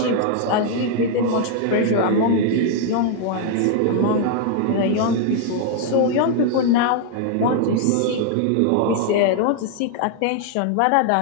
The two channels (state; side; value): different; both; correlation 0.00